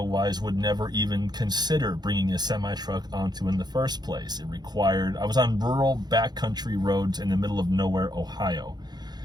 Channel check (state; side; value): late; left; 0.20 ms